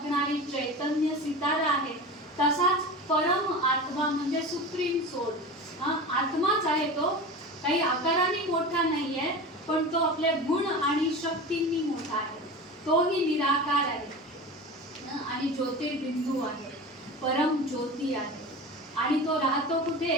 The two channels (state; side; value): normal; both; correlation 0.31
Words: चैतन्य सितारा आहे, तसाच परम आत्मा म्हणजे सुप्रीम सोल आत्माच आहे. तो काही आकाराने मोठा नाहीये, पण तो आपल्या गुण आणि शक्तींनी मोठा आहे. तोही निराकार आहे आणि ज्योतिर्बिंदू आहे, परम ज्योती आहे. आणि तो राहतो कुठे?